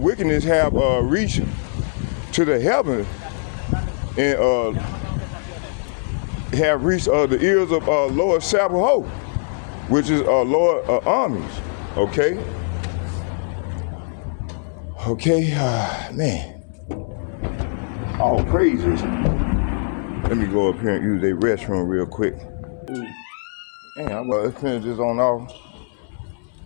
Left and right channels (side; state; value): right; silent; 64 dB below the other